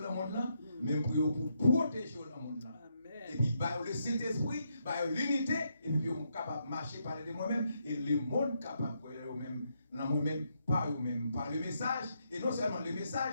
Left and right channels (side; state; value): both; inverted; correlation -0.79